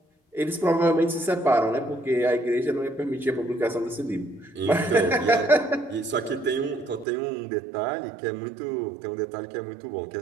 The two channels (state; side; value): drops out; left; at 7.1 s